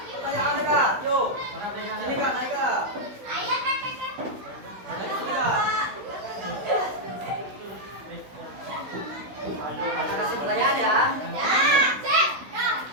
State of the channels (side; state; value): left; late; 16 ms